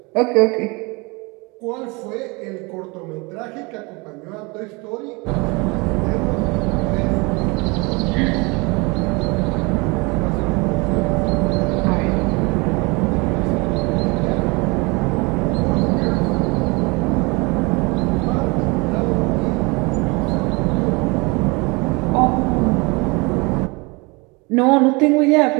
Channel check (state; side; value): quieter; left; 27.4 dB